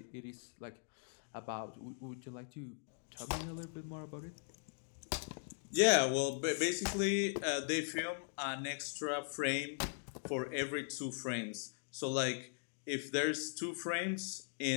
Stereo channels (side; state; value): right; silent; digital silence